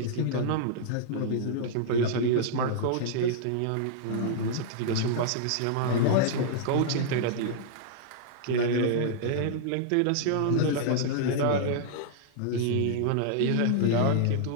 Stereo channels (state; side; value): different; both; correlation -0.02